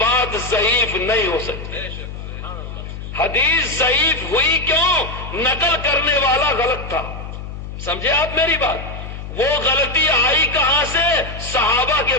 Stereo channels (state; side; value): noise; left; hum, 9 dB below the sound